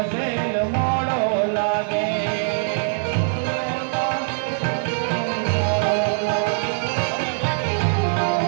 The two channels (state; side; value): silent; left; digital silence